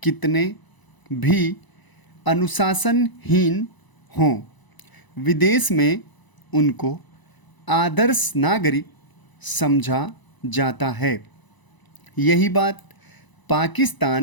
कितने भी अनुशासनहीन हों, विदेश में उनको आदर्श नागरिक समझा जाता है। यही बात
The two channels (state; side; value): late; right; 1.0 ms